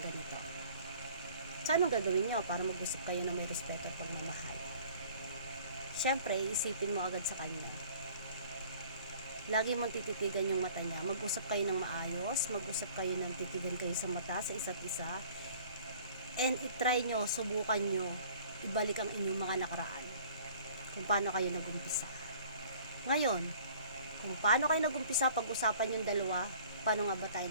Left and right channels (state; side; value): inverted; both; correlation -0.51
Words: So, anong gagawin nyo para mag-usap kayo ng may respeto at pagmamahal? Siyempre, isipin mo agad sa kanya. Lagi mong tititigan yung mata niya. Mag-usap kayo ng maayos, mag-usap kayo ng titigan kayo sa mata sa isa't isa, and itry nyo, subukan nyo, ibalik ang inyong mga nakaraan. Kung paano kayo nag-umpisa. Ngayon, kung paano kayo nag-umpisa, pag-usapan yung dalawa, paano nga ba tayo